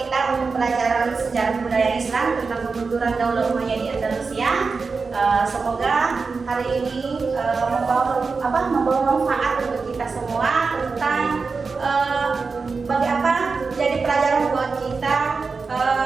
untuk pelajaran sejarah budaya Islam tentang kemunduran Daulah Umayyah di Andalusia. Semoga hari ini membawa manfaat untuk kita semua tentang bagi apa jadi pelajaran buat kita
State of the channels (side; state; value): left; quieter; 4.6 dB